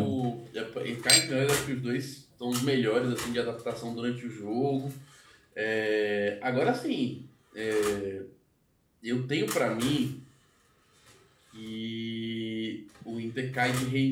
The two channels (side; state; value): both; identical; correlation 1.00